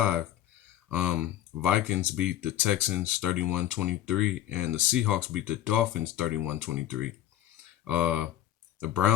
Vikings beat the Texans 31-23, and the Seahawks beat the Dolphins 31-23. Uh, the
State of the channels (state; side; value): quieter; right; 12.3 dB